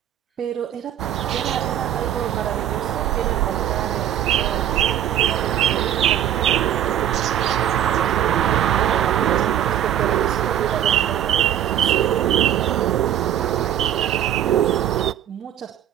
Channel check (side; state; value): left; quieter; 10.8 dB